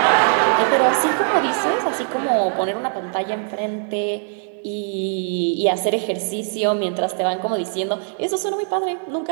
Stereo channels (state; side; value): silent; left; 65 dB below the other